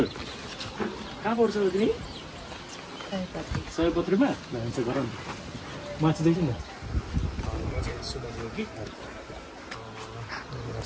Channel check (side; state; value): both; identical; correlation 1.00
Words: कहाँ पढ्छौ तिमी? सयपत्रीमा भन्छ गरौँ। माथि देखि न सुमन योगी